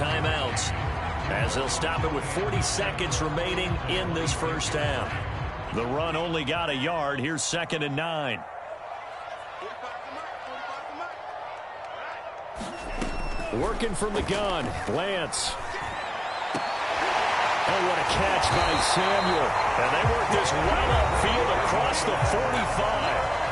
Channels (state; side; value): identical; both; correlation 1.00